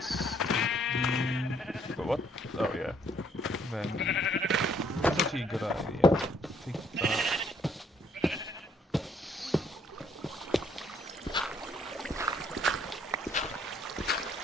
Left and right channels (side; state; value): both; normal; correlation 0.66